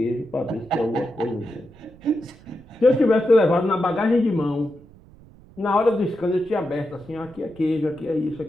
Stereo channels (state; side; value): noise; right; rumble, 23 dB below the sound